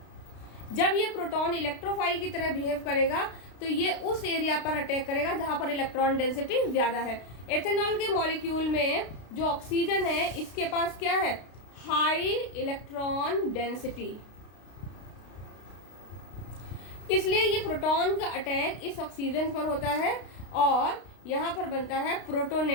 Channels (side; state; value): right; late; 32 ms